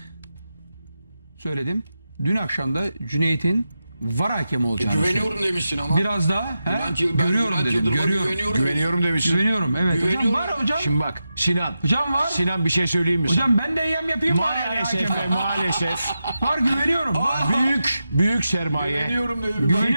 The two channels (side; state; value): both; inverted; correlation -0.90